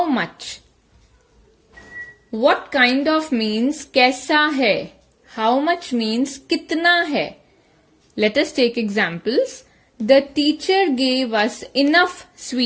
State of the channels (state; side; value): identical; both; correlation 1.00